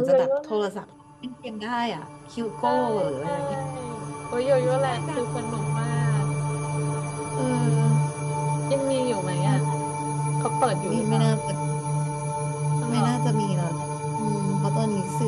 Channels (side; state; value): both; identical; correlation 1.00